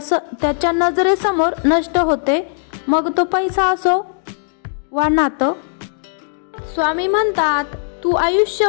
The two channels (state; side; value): silent; right; digital silence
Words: नजरेसमोर नष्ट होते, मग तो पैसा असो वा नातं। स्वामी म्हणतात तू